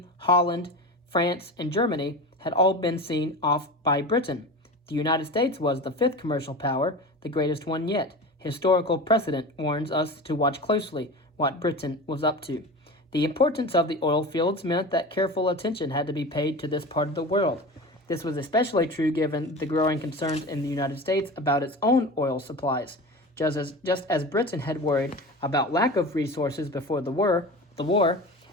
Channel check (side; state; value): both; normal; correlation 0.31